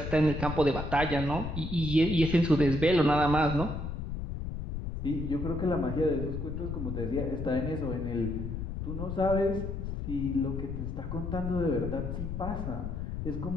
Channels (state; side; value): noise; left; rumble, 5 dB below the sound